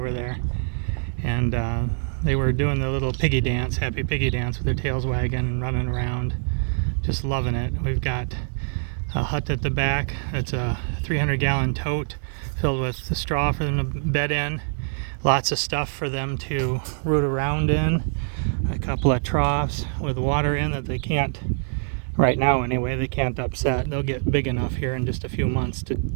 there. And they were doing the little piggy dance, happy piggy dance with their tails wagging and running around. Just loving it. We've got a hut at the back. It's a 300-gallon tote filled with the straw for them to bed in. Lots of stuff for them to root around in. A couple of troughs with water in that they can't, right now anyway, they can't upset. They'll get big enough here in just a few months to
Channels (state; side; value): silent; left; 56 dB below the other